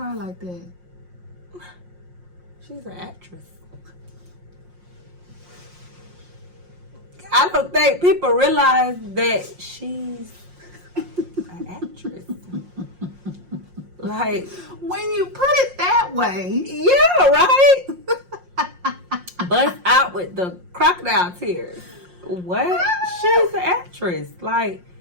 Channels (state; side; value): late; left; 5.6 ms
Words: like that? She's an actress. I don't think people realize that she's an actress. Like, when you put it that way. Yeah, right? Bust out with the crocodile tears. What? She's an actress. Like,